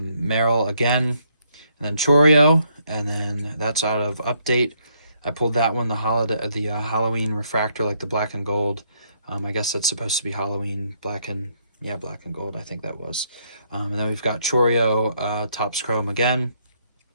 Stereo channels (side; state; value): both; inverted; correlation -0.72